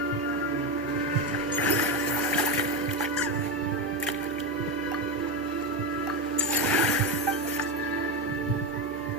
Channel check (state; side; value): normal; both; correlation 0.14